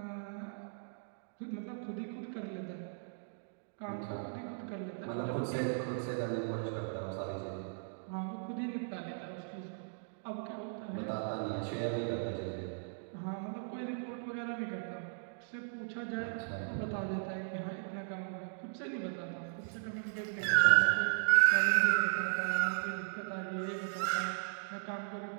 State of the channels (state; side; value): silent; left; digital silence